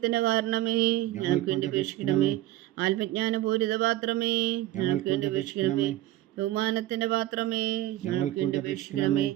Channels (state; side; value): quieter; left; 15.0 dB